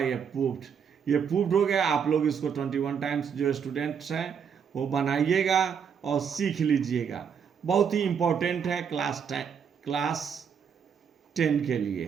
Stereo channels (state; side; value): quieter; left; 7.1 dB